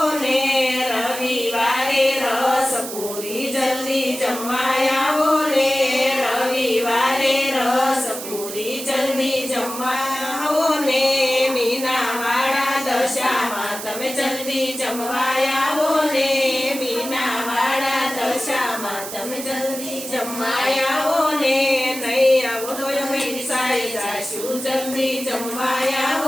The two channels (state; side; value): noise; right; hiss, 9 dB below the sound